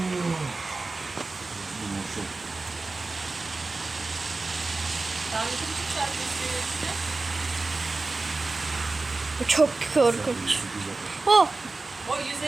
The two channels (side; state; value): left; quieter; 3.5 dB